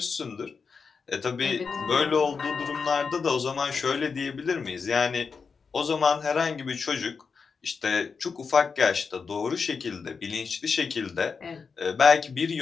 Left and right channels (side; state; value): right; quieter; 5.3 dB